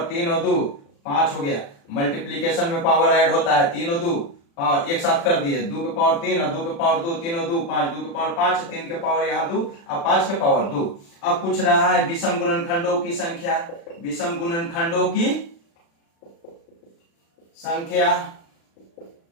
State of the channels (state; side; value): late; right; 36 ms